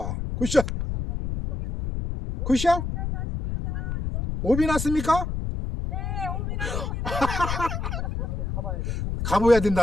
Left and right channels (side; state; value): left; noise; rumble, 3 dB below the sound